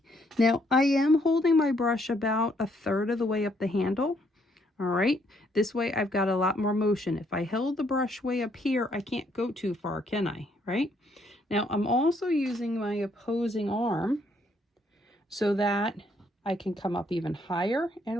Now, I am holding my brush about 1/3 of the way up the handle. All right, this way I've got a lot more motion. If I held the brush way up here, I can't go too far, can I? Right? Now, I'm also using my opposing arm so that I can come up even higher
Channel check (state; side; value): normal; both; correlation 0.70